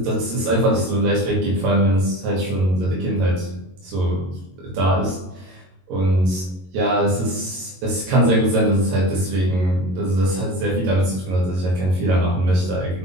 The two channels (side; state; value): left; late; 22 ms